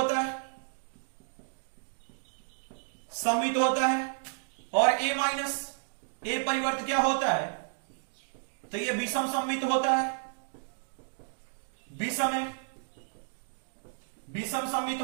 है। और ए माइनस ए परिवर्त क्या होता है, तो ये विषम सममित होता है, विषम सममित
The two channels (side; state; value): left; silent; digital silence